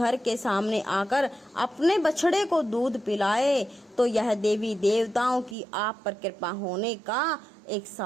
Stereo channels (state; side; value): drops out; left; at 5.6 s